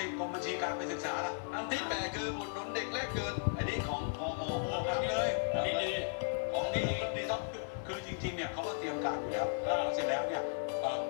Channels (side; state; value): right; silent; 54 dB below the other